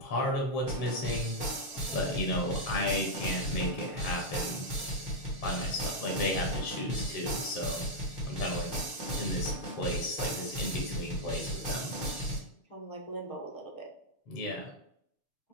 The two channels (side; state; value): right; late; 7.0 ms